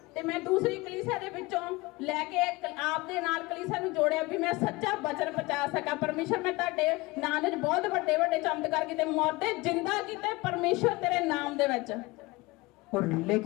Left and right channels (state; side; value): quieter; right; 22.5 dB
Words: ते मैं दूसरी कलीसिया दे विचों लैके आप दे नाल कलीसिया नूं जोड़िया भी मैं सच्चा वचन पहुंचा सका। परमेश्वर मैं तुहाडे नाम दे बहुत बड़े बड़े चमत्कार कीते, मरदे जिंदा कीते परमेश्वर तेरे नाम दे विच। और